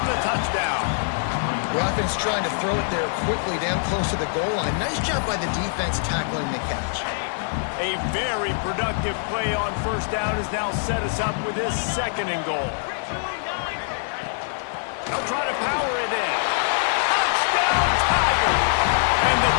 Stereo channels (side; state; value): right; silent; 63 dB below the other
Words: the touchdown. The offense trying to throw it there quickly down close to the goal line. Nice job by the defense tackling the catch. A very productive play on 1st down has now set us up with this 2nd and goal. They'll try to power it in. Touchdown, Tigers! And the